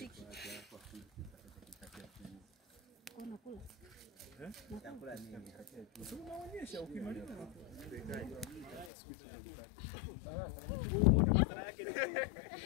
Kuna kula. Nakula nini? Unaonyesha ukimaliza. Madhara yake ni wewe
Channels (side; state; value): right; drops out; at 8.9 s